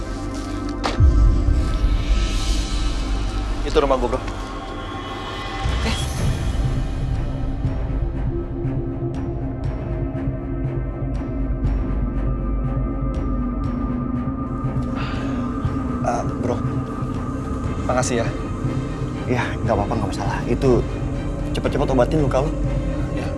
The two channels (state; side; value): identical; both; correlation 1.00